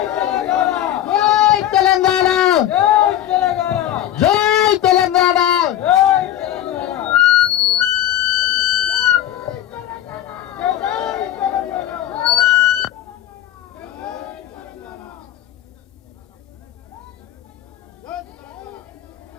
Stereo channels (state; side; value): quieter; right; 12.3 dB